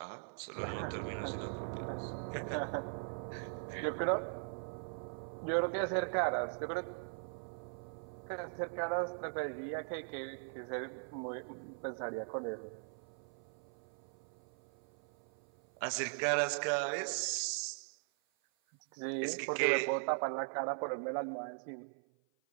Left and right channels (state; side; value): silent; left; 51 dB below the other